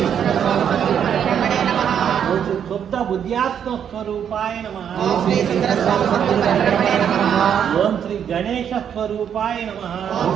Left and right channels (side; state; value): left; quieter; 8.5 dB